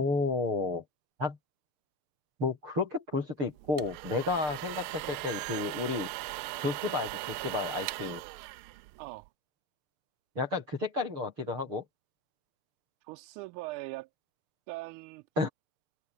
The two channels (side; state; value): left; late; 6.7 ms